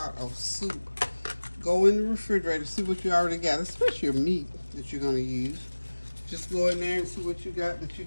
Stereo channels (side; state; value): both; inverted; correlation -1.00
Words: of soup. Go in the refrigerator, see what you already got, especially your meat that you're going to use. Just go in there and see what you got that you